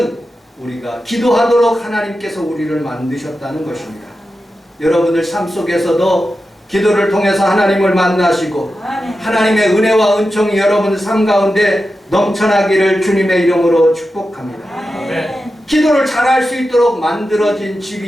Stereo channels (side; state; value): both; normal; correlation 0.91